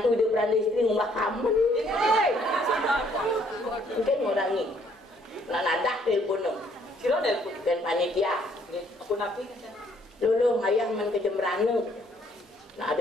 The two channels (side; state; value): both; normal; correlation 0.65